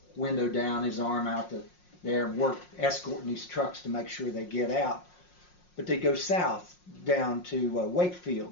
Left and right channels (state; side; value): late; right; 5.5 ms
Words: window down, his arm out there, escorting these trucks to make sure they get out. But they go south down to